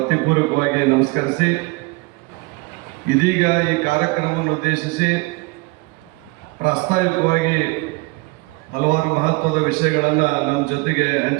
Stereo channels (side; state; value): left; quieter; 26.0 dB